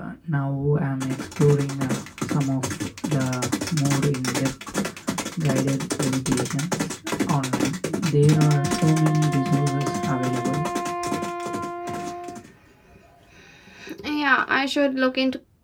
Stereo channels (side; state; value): both; identical; correlation 1.00